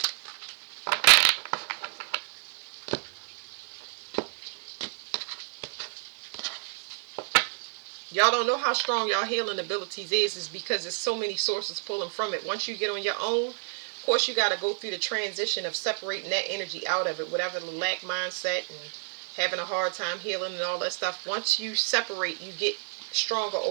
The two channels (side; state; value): left; silent; 58 dB below the other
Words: Y'all don't know how strong y'all healing abilities is because there's so many sources pulling from it. Once you get on your own, of course you got to go through the transition of separating that energy out of it, whatever the lack mindset and having a hard time healing and all that stuff. Once you separate, you get stronger